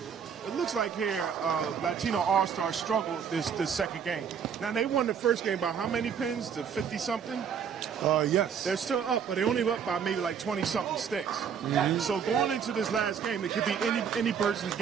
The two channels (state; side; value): quieter; left; 7.3 dB